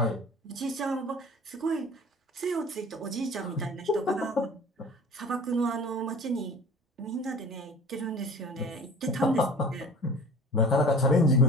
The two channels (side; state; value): both; normal; correlation 0.41